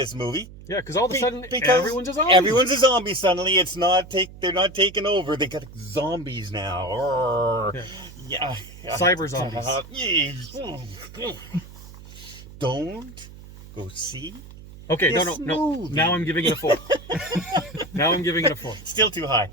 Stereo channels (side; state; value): right; noise; hum, 17 dB below the sound